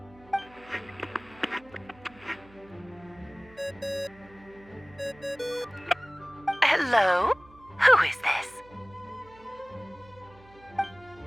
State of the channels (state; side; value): noise; right; hum, 24 dB below the sound